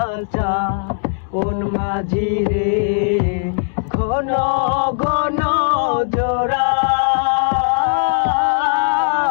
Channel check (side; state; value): right; silent; digital silence